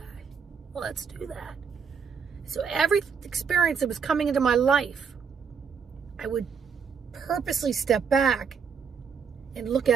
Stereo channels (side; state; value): left; quieter; 6.4 dB